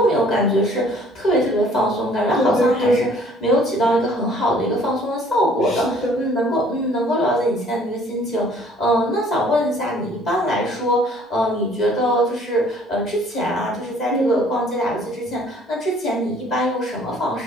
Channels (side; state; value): both; normal; correlation 0.56